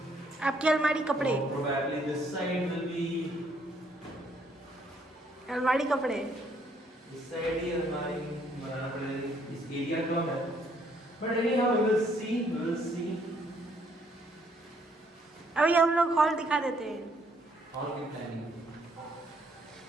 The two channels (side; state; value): both; normal; correlation 0.68